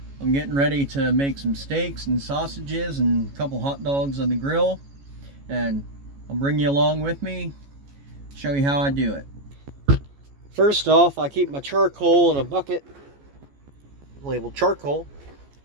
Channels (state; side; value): late; left; 14 ms